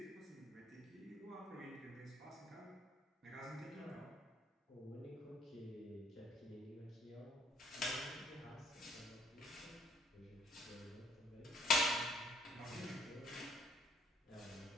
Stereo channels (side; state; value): both; normal; correlation 0.64